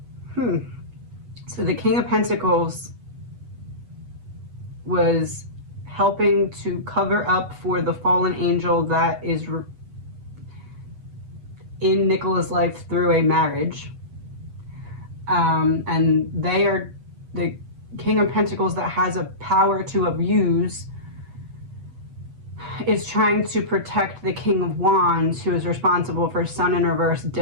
So the King of Pentacles was helping to cover up for the fallen angel that is in Nicola's life through a marriage. And they are the King of Pentacles that has a power to abuse is trying to protect the King of Wands, who is responsible for Sun in reverse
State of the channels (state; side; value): late; left; 8.1 ms